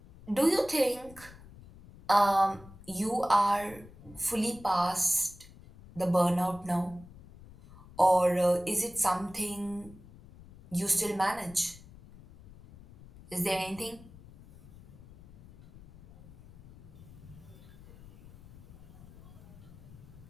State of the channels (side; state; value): left; noise; rumble, 20 dB below the sound